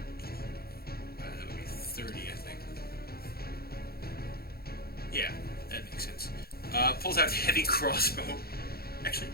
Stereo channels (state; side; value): late; right; 0.45 ms